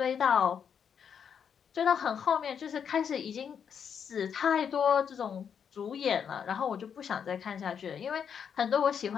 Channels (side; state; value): right; quieter; 7.5 dB